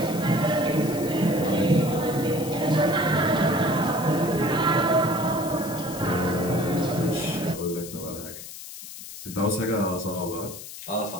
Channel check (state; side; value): noise; left; hiss, 12 dB below the sound